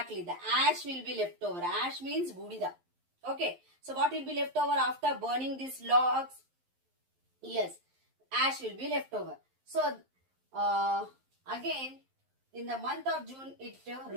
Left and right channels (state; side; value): late; left; 11 ms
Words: The ash will be left over. Ash means budida. Okay. So what will be left over after burning these logs? Yes, ash will be left over. So again, in the month of June, it